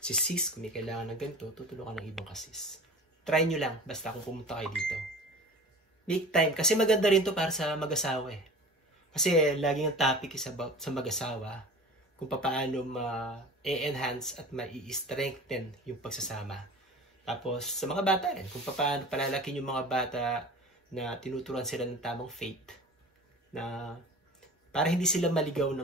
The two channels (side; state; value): both; normal; correlation 0.39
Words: Si sis kung may kailangan ng ganito, tutulungan ng ibang ka-sis. Try nyo lang basta kung pumunta kayo dito. Make time kasi maganda rin to para sa mag-asawa eh. Kasi laging ang topic is about sa mag-asawa kung paano ma-enhance at ma-strengthen yung pagsasama. Tapos sa mga bata rin, kung paano palalakin yung mga bata na tinuturuan sila ng tamang faith na para hindi sila maligaw